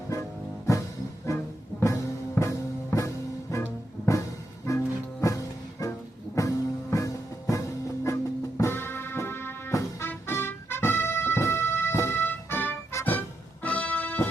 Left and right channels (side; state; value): both; normal; correlation 0.83